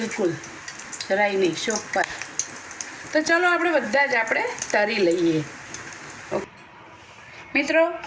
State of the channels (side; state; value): both; identical; correlation 1.00